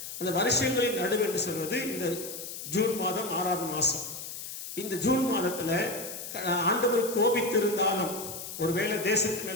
அந்த வருஷங்களின் நடுவு என்று சொல்வது இந்த ஜூன் மாதம் 6வது மாசம். இந்த ஜூன் மாதத்துல ஆண்டவர் கோபித்திருந்தாலும், ஒருவேளை தேசத்து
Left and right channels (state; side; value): noise; left; hiss, 9 dB below the sound